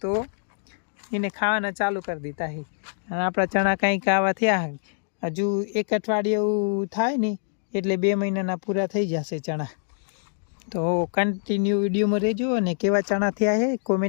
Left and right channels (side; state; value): right; silent; digital silence